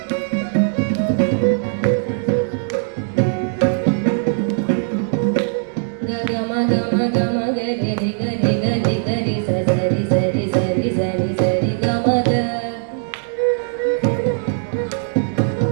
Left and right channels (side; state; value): left; silent; digital silence